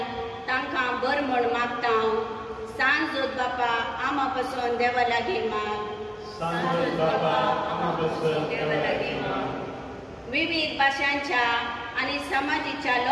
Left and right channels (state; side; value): identical; both; correlation 1.00